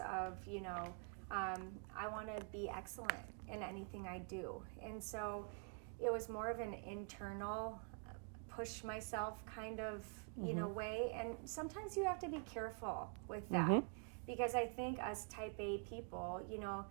of, I want to be excellent in anything I do. And so it was more of an internal push myself kind of, way. And sometimes you have to be careful with that because I think us type A people,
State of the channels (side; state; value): left; quieter; 37.4 dB